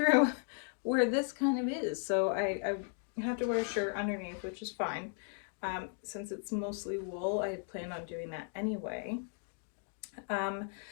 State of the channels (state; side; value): silent; right; 54 dB below the other